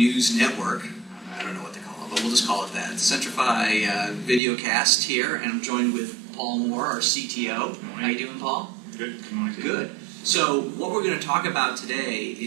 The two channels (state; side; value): drops out; left; at 4.4 s